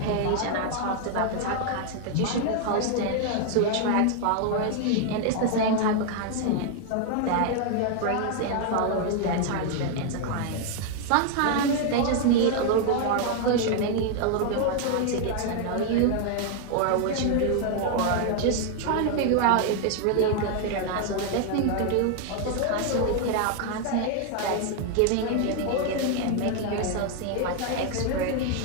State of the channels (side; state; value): both; different; correlation 0.00